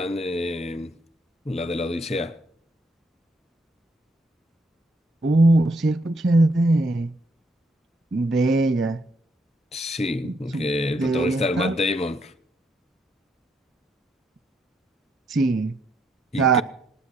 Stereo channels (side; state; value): both; normal; correlation 0.75